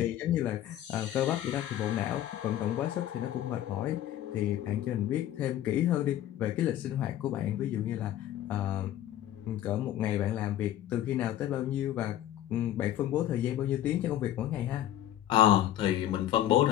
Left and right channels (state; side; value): quieter; right; 12.4 dB